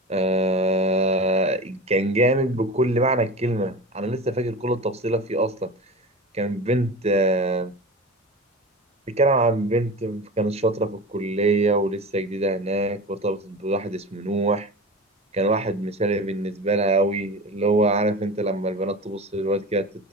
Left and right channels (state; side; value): normal; both; correlation 0.31